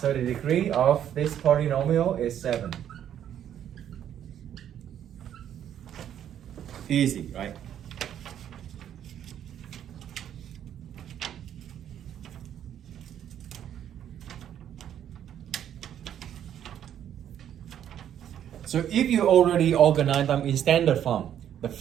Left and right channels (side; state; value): left; quieter; 10.1 dB